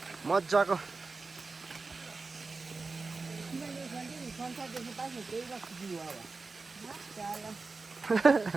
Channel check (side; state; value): left; quieter; 4.0 dB